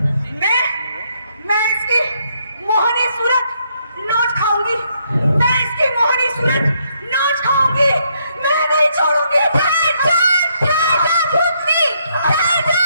मैं इसकी मोहनी सूरत नोच खाऊंगी, मैं इसकी मोहनी सूरत नोच खाऊंगी, मैं नहीं छोड़ूंगी।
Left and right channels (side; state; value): both; inverted; correlation -0.74